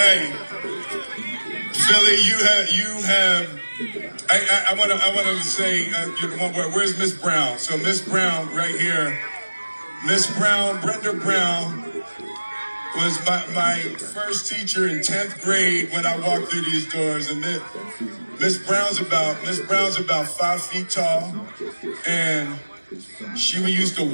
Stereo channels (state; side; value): inverted; both; correlation -1.00